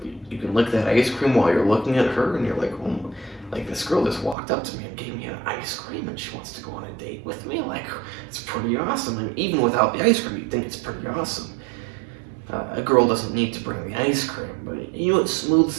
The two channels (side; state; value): left; drops out; at 4.4 s